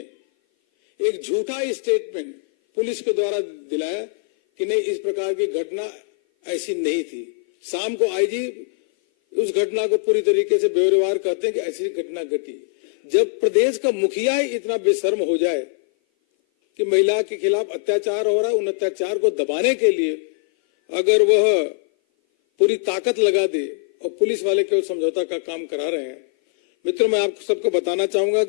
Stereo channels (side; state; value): right; silent; 57 dB below the other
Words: एक झूठा स्टेटमेंट पुलिस के द्वारा दिलाया कि नहीं, इस प्रकार की घटना ऐसी नहीं थी। शाम को आईजी उस घटना को पूरी तरीके से बेवरवार कहते हैं कि ऐसी घटना घटी। जब प्रदेश का मुखिया ही इतना बेशर्म हो जाए कि महिला के खिलाफ अत्याचार हो रहा है, उन अत्याचार को दबाने के लिए अगर वह पूरी ताकत लगा दे और पुलिस वाले केवल समझौता का काम करा रहे हैं। मित्रों, मैं आपको सबको बताना चाहूंगा